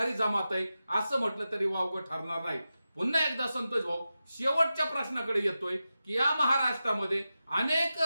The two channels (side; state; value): both; inverted; correlation -0.92